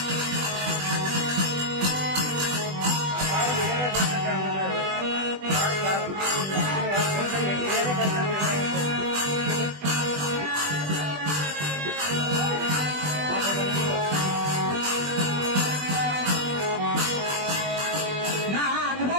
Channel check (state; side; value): late; left; 20 ms